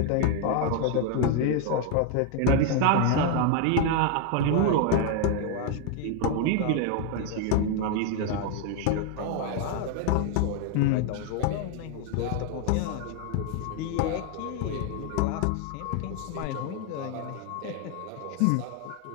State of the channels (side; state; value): both; different; correlation 0.00